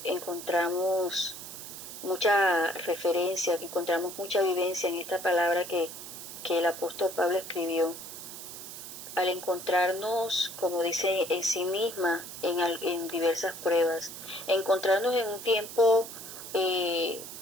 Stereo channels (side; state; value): right; noise; hiss, 11 dB below the sound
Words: encontramos mucha referencia, encontramos mucha vivencia en esta palabra que el apóstol Pablo escribió. Al encontrarnos, como dice en sí misma, en diversas pruebas, encontrarnos en un tiempo